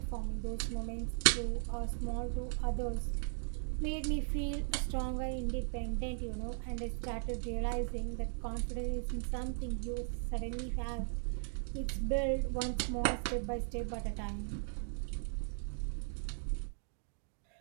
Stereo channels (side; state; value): left; silent; digital silence